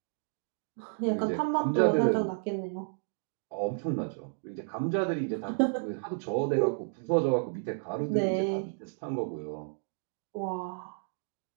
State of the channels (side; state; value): left; silent; digital silence